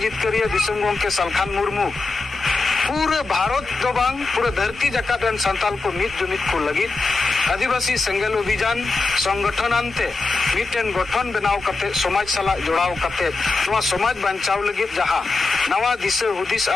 जितकरिया दिसम गोंके सालखान मुर्मू पूरे भारत दो बांग पूरे धरती जकात रन संताल को मित जुमित को लगित आदिवासी संगल अभियान संगठन अंते मिटेन गठन बनाव कते समाज सला जोड़ाव कते नवा समाज बचाव लगित जहां नवा दिशा हुदिस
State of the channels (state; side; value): quieter; right; 3.7 dB